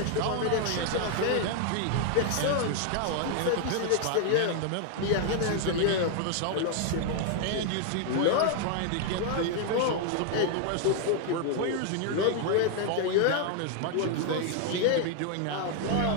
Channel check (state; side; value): different; both; correlation 0.00